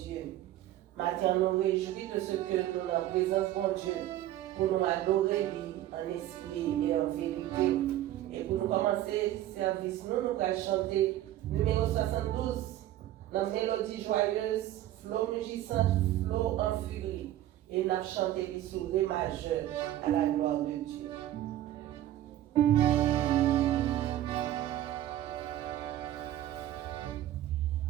Maintenant, nous réjouis de ce que nous en présence bon Dieu pour nous adorer lui en esprit et en vérité. Et pour nous commencer le service, nous allons chanter numéro 72 dans mélodie joyeuse, flow mugissant, flow en furie. Et nous allons chanter les sous ré majeur à la gloire de Dieu.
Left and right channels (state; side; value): quieter; left; 13.5 dB